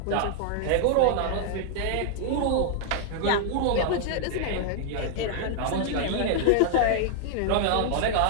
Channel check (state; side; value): different; both; correlation -0.01